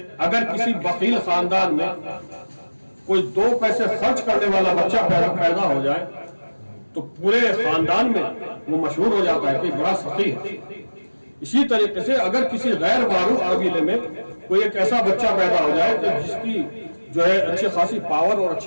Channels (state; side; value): inverted; both; correlation -1.00